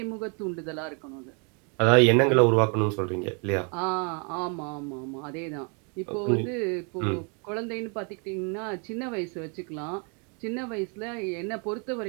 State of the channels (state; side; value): quieter; left; 36.3 dB